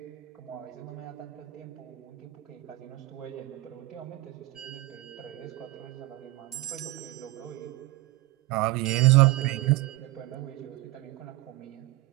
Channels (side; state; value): left; quieter; 19.3 dB